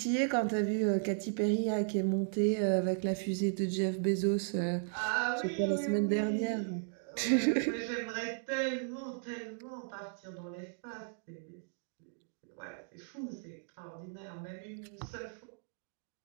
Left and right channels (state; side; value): silent; left; digital silence